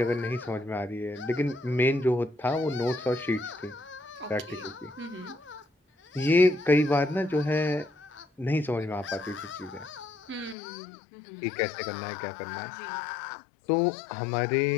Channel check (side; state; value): right; drops out; at 10.6 s